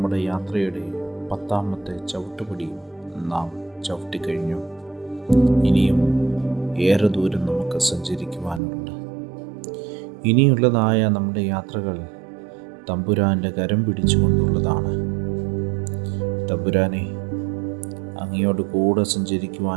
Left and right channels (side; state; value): left; drops out; at 8.6 s